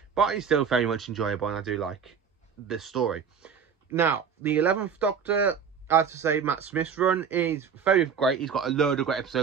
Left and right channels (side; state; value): left; quieter; 6.8 dB